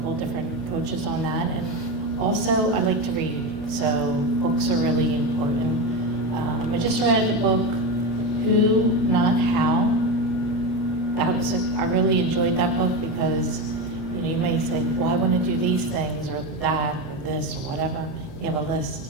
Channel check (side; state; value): both; normal; correlation 0.17